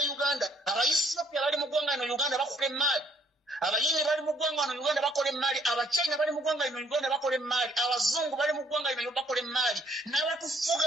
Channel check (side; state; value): both; normal; correlation 0.64